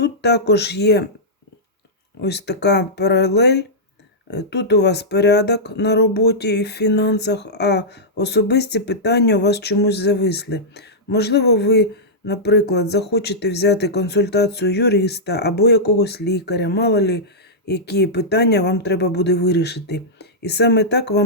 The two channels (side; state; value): both; normal; correlation -0.11